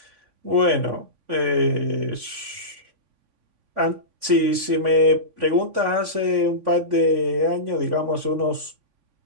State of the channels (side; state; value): left; late; 3.5 ms